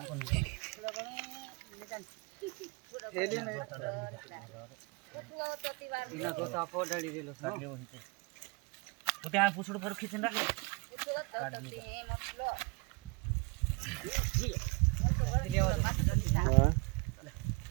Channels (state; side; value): quieter; left; 27.5 dB